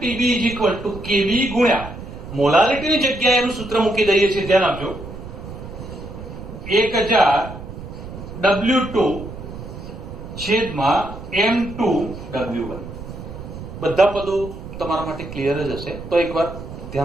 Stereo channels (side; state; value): right; noise; rumble, 11 dB below the sound